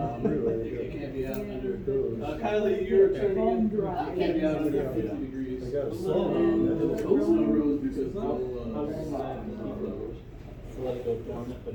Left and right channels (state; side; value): identical; both; correlation 1.00